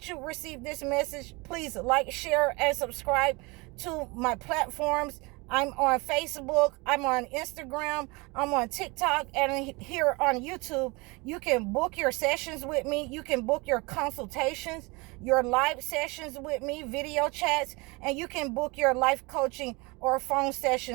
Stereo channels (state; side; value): quieter; left; 26.2 dB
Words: you receive this message. Please like, share, and subscribe to my platforms. I'm on Facebook, I'm on Instagram, I'm on TikTok, and here on YouTube. You can book your sessions with me. You can book your consultations, your live sessions with me, video chats, and you can book your life coaching or phone